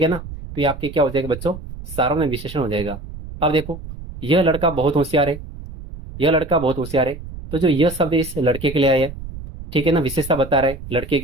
है ना, तो ये आपके क्या हो जाएगा बच्चों, सार्वनामिक विशेषण हो जाएगा। अब देखो यह लड़का बहुत होशियार है, यह लड़का बहुत होशियार है, तो जो यह शब्द इस लड़के के लिए आया है, ठीक है ना, विशेषता बता रहा है लड़के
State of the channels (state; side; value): noise; right; rumble, 12 dB below the sound